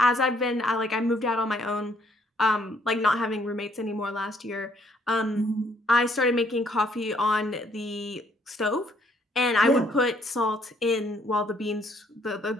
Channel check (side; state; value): both; normal; correlation 0.66